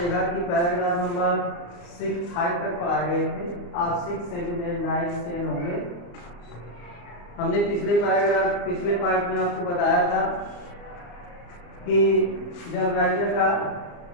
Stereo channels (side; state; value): right; late; 34 ms